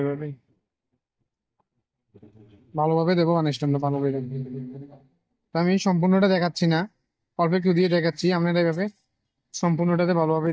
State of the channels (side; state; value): both; identical; correlation 1.00